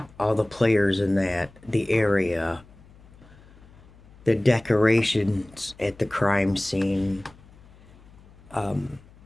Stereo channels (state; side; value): noise; left; hum, 24 dB below the sound